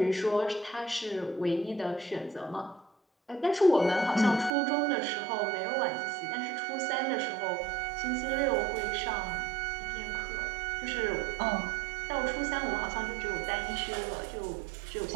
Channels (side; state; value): left; drops out; at 4.5 s